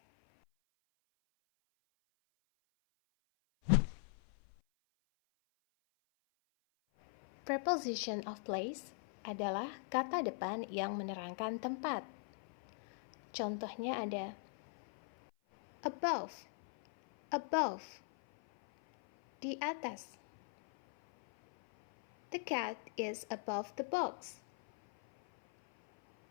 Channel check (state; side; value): silent; right; 51 dB below the other